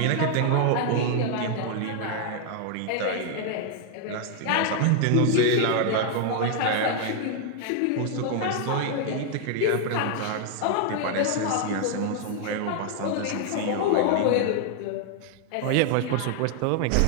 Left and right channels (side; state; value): both; different; correlation 0.00